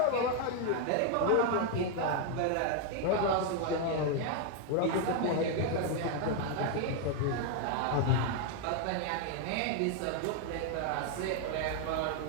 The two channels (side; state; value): both; different; correlation 0.00